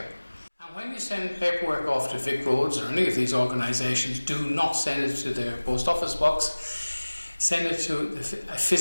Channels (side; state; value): both; inverted; correlation -1.00